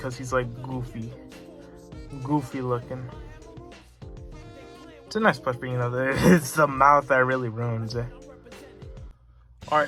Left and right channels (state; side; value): identical; both; correlation 1.00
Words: he's like goofy. Goofy looking. It's a nice plush, but you know, it's the mouth that really ruins it.